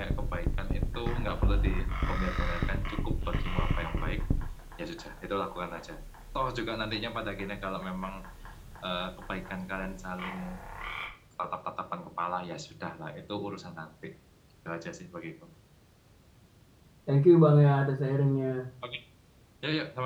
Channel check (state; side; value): identical; both; correlation 1.00